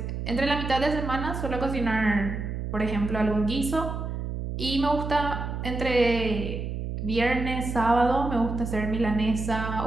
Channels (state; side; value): noise; right; hum, 4 dB below the sound